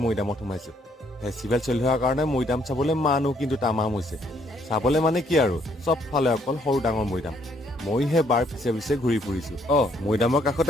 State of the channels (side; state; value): both; normal; correlation 0.68